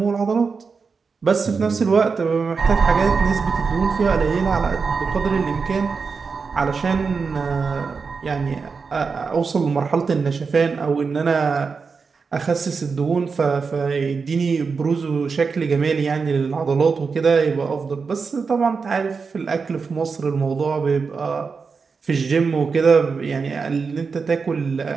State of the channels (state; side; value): quieter; left; 5.1 dB